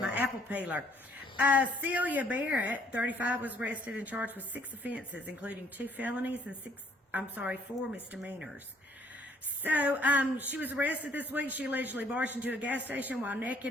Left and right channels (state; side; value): normal; both; correlation 0.63